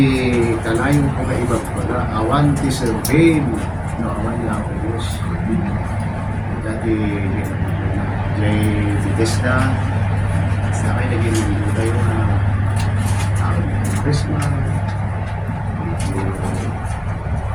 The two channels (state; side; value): identical; both; correlation 1.00